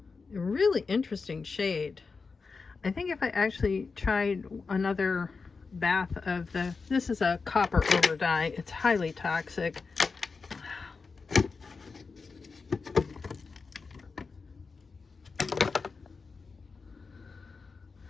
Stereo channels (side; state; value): right; quieter; 4.6 dB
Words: a really interesting shade. I think if I actually tried another bath of this is a copper over dye. It's highly toxic.